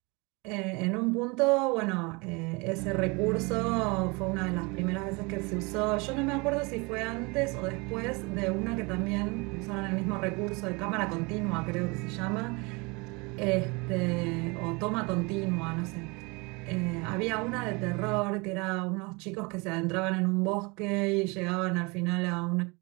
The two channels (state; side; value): quieter; left; 27.6 dB